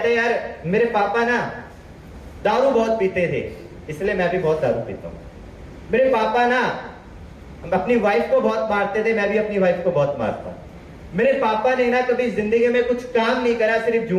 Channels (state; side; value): identical; both; correlation 1.00